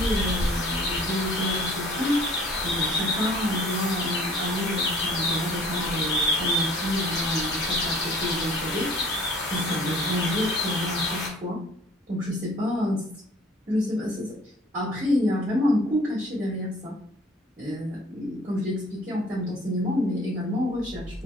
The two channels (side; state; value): both; normal; correlation 0.52